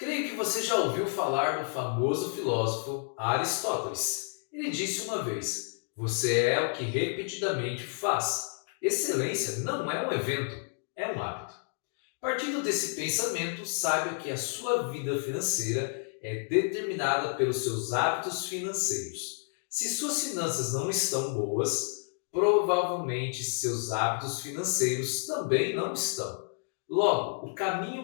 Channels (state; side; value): silent; right; 56 dB below the other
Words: que você já ouviu falar do famoso filósofo Aristóteles. Ele disse uma vez: Você é o que repetidamente faz. Excelência não é um evento, é um hábito. Partindo desse pensamento, saiba que a sua vida financeira é determinada pelos seus hábitos financeiros. Se suas finanças não estão boas, provavelmente seus hábitos financeiros também não estão. Logo, o